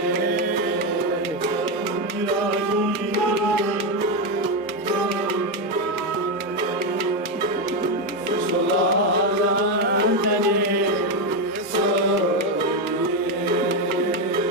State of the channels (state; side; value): normal; both; correlation 0.08